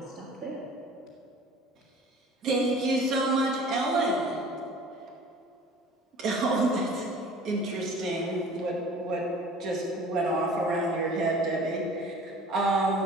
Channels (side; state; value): both; normal; correlation 0.46